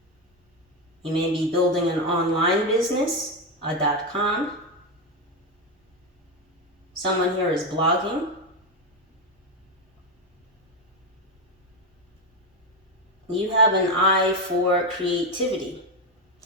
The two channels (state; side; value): normal; both; correlation 0.10